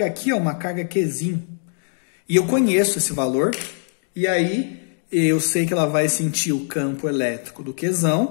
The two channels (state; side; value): silent; right; digital silence